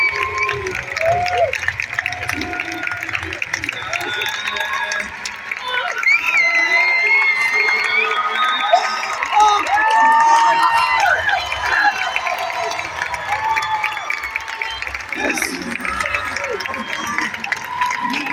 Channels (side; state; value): both; identical; correlation 1.00